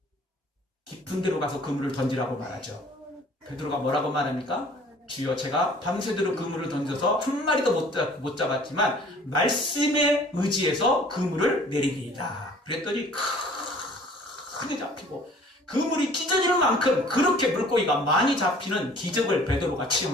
깊은 데로 가서 그물을 던지라고 말하죠. 베드로가 뭐라고 말합니까? 주여, 제가 밤새도록 그물을 던져서 한 마리도 못 잡았지만 말씀에 의지해서 그물을 내리리이다. 그랬더니 크게 잡히고 그물이 찢어지는 만큼 그렇게 물고기가 많이 잡히는 기적을 베드로가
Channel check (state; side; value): normal; both; correlation 0.52